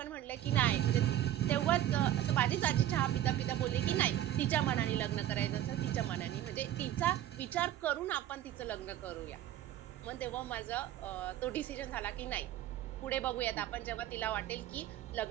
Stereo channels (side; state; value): left; quieter; 12.4 dB